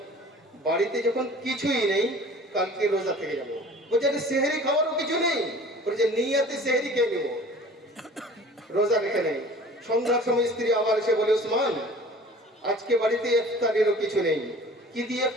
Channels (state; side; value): normal; both; correlation 0.45